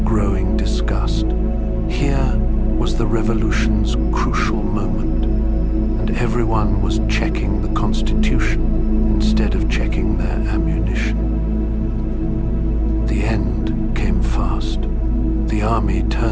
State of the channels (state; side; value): identical; both; correlation 1.00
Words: growing disgust. Here was the revolution's crucial moment, and everyone was checking the Constitution instead of checking their ammunition. The end came fast. The army